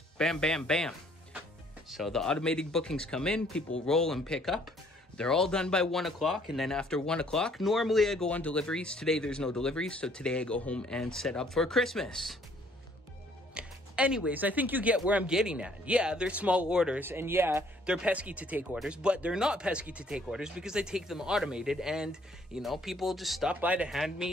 bam, bam, bam. So the automated bookings come in, people roll and pick up. They're all done by 1 o'clock, and then after 1 o'clock, normally I go on deliveries. Today there's no deliveries, so today I go home and set up for Christmas. Anyways, I think you get where I'm getting at. Yeah, they're small orders, and yeah, they're pesky to take orders, but they're not pesky to take orders because I take them automated, and, you know, people just stop by to hand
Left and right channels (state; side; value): normal; both; correlation 0.62